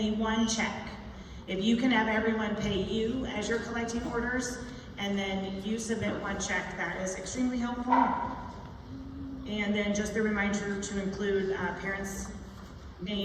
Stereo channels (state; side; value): identical; both; correlation 1.00